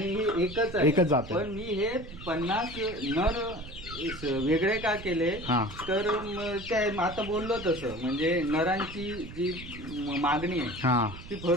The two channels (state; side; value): noise; right; rumble, 14 dB below the sound